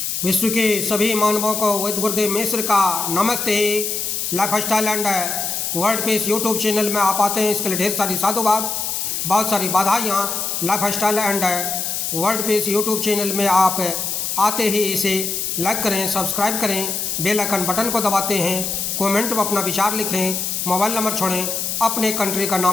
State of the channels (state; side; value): noise; left; hiss, 2 dB below the sound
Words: विश्व के सभी मानवों को वैद्य गुरुदेव मिश्र का नमस्ते। Life style and world peace YouTube channel में आप आते हैं, इसके लिए ढेर सारी साधुवाद, बहुत सारी बधाइयाँ। Life style and world peace YouTube channel में आप आते ही इसे लाइक करें, सब्सक्राइब करें, बेल आइकन बटन को दबाते हैं, कमेंट में अपना विचार लिखें, मोबाइल नंबर छोड़ें, अपने कंट्री का